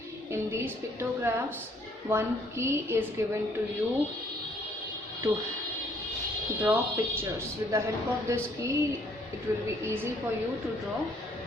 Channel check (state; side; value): normal; both; correlation 0.64